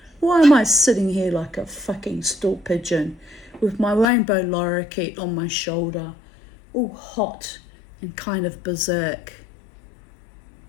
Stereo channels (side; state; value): right; drops out; at 4.0 s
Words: Why am I sitting here like a fucking stool pigeon with my rainbow lorikeet on my shoulder, all hot and kind of berserk?